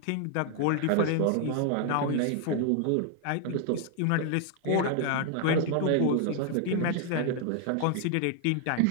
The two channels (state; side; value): different; both; correlation 0.00